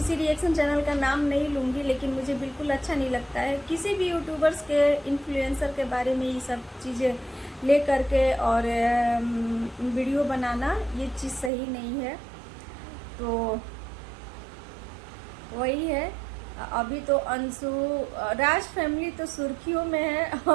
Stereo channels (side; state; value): left; drops out; at 11.5 s